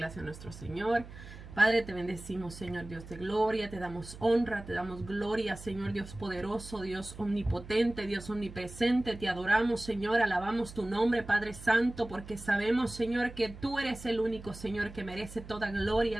a nuestro Señor. Padre, te bendecimos, Señor Dios de gloria, te damos honra, te damos gloria, Señor Dios poderoso, Dios omnipotente, Dios omnipresente, te adoramos, Señor, alabamos tu nombre, Padre Santo, porque sabemos, Señor, que tú eres el único, Señor, que merece toda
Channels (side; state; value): right; noise; hum, 15 dB below the sound